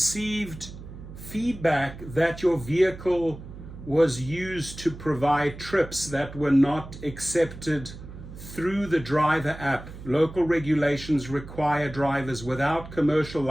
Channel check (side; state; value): right; noise; hum, 14 dB below the sound